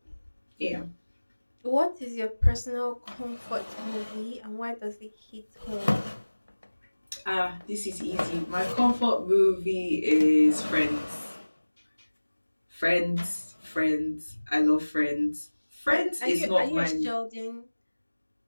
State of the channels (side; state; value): both; inverted; correlation -1.00